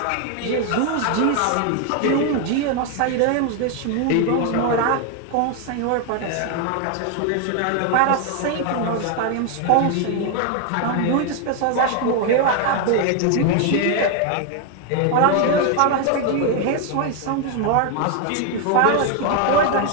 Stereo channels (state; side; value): different; both; correlation 0.01